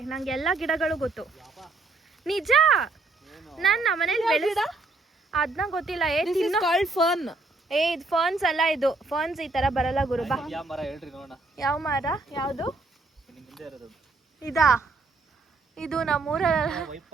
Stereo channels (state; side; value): quieter; left; 3.4 dB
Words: ನಂಗೆ ಎಲ್ಲ ಗಿಡಗಳು ಗೊತ್ತು. ನಿಜ, ನನ್ನ ಮನೇಲಿ ಬೆಳೆದ ಅದನ್ನ ಗೊತ್ತಿಲ್ಲ. ಫರ್ನ್. ಇದು ಫರ್ನ್ಸ್ ಅಲ್ಲ, ಇದು ಫರ್ನ್ಸ್ ಈ ತರ ಬರಲ್ಲ ಗುರು. ಬಾ, ಯಾವ ಮರ ಹೇಳ್ರಿ ನೋಡೋಣ. ಯಾವ ಮರ? ಯಾವುದು? ನಿಮ್ ಹಿಂದೆ ಇರೋದು ಇದಾ? ಇದು ನಮ್ಮೂರ. ವೈಪ್